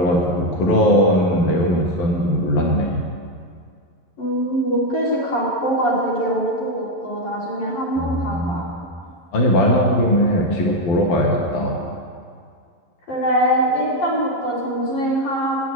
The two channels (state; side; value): late; right; 11 ms